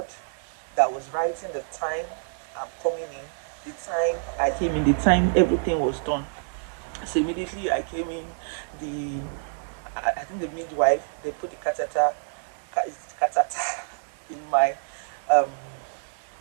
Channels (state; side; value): silent; left; digital silence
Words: that was writing the time I'm coming in, the time I came in, the time everything was done. So immediately I came in, I think the midwife, they put the catheter in my,